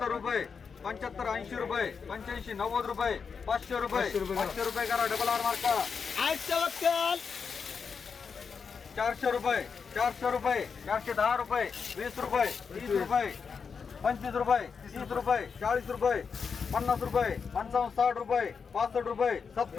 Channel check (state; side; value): quieter; right; 5.8 dB